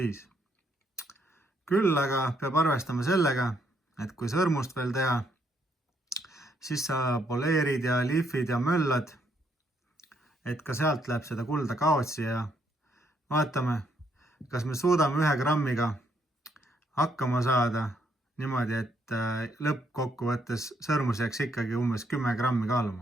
Küll aga peab arvestama sellega, et kui sõrmust veel teha, siis sa poleerid ja lihvid ja möllad, et ka sealt läheb seda kulda kaotsi ja vaatame, kas me suudame 1 grammiga hakkama saada niimoodi, et lõppkokkuvõttes sõrmus jääks ikkagi umbes 10 grammi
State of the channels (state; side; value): normal; both; correlation 0.72